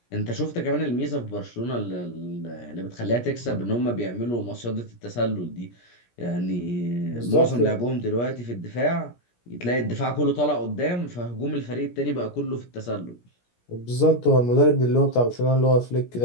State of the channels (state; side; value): late; right; 17 ms